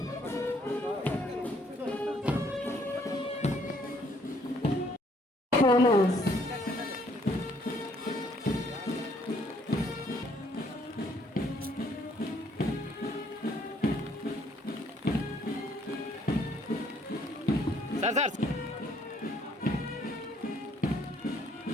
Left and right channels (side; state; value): both; normal; correlation 0.65